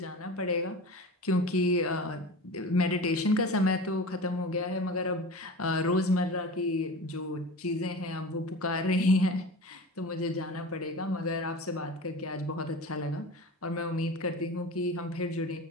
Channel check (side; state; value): both; normal; correlation 0.33